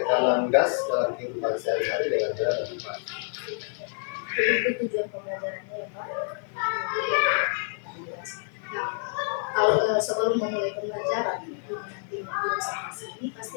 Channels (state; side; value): silent; right; 60 dB below the other